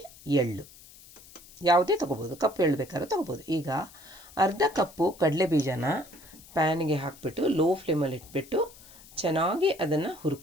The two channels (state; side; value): noise; left; hiss, 21 dB below the sound